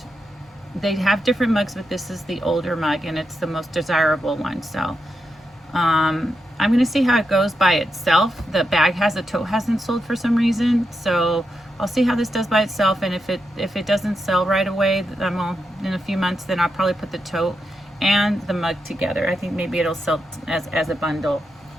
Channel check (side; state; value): both; normal; correlation 0.86